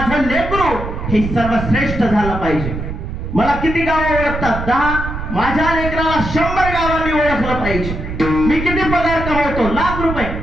लेकरू हे सर्वश्रेष्ठ झालं पाहिजे. मला किती गावं ओळखतात? 10. माझ्या लेकराला 100 गावांनी ओळखलं पाहिजे. मी किती पगार कमवतो? ₹1,00,000.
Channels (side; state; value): right; noise; rumble, 6 dB below the sound